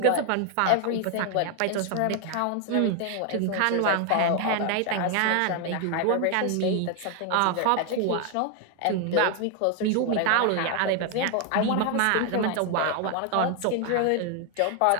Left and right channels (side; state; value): both; different; correlation 0.00